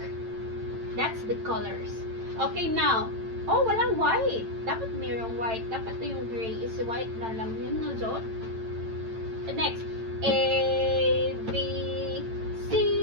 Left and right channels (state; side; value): late; left; 8.9 ms